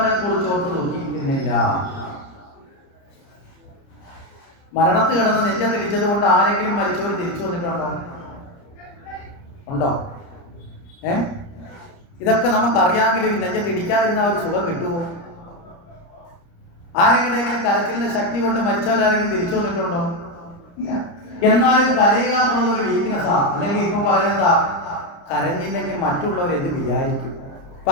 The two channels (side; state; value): right; late; 30 ms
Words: കുറിച്ച് ഓർത്ത് ദുഃഖിക്കുന്നില്ല. മരണത്ത് കിടന്ന് നെഞ്ചത്തിടിച്ചത് കൊണ്ട് ആരെങ്കിലും മരിച്ചവർ തിരിച്ചു വന്നിട്ടുണ്ടോ? ഉണ്ടോ? ഇതൊക്കെ നമുക്കറിയാമെങ്കിലും ഈ നെഞ്ചത്തിടിക്കാതിരുന്ന ഒരു സുഖം കിട്ടുമോ? ആരെങ്കിലും കരച്ചിലിന്റെ ശക്തി കൊണ്ട് മരിച്ചവരാരെങ്കിലും തിരിച്ചു വന്നിട്ടുണ്ടോ? ഇല്ല. എന്നാലും കരയുക എന്നുള്ളതൊരു വീക്ക്നെസ്സാണ്. അല്ലെങ്കിൽ ഇപ്പം പറയുന്നതാ, കരഞ്ഞില്ലെങ്കിൽ മറ്റുള്ളവർ എന്ത് വിചാരിക്കും. അപ്പൊ